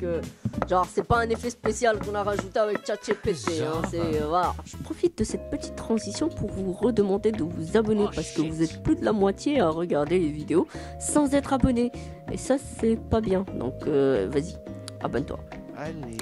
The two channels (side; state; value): both; identical; correlation 1.00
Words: c'est pas un effet spécial qu'on a rajouté avec ChatGPT, voilà. Je profite de cette petite transition pour vous redemander de vous abonner parce que vous êtes plus de la moitié à regarder les vidéos sans être abonné et ça c'est pas bien, donc vas-y, abonne-toi.